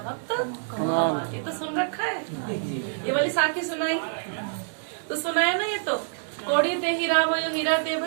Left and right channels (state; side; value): silent; left; 61 dB below the other